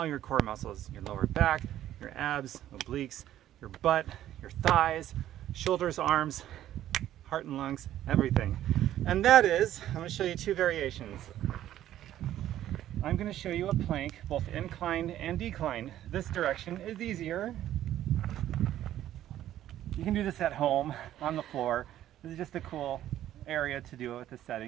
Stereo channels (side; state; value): left; quieter; 12.4 dB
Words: your core muscles, your lower back, your abs, obliques, your butt, your thighs, shoulders, arms, heart and lungs, everything. And that is, I'm going to show you two variations. I'm going to show you a plank, both inclined and declined. This direction is easier. You can do this at home, on the floor. This is just a cool area to do it with this